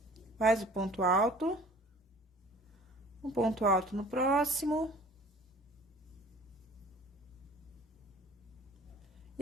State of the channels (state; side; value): normal; both; correlation 0.48